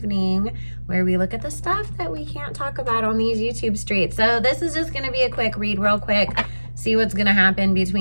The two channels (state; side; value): inverted; both; correlation -1.00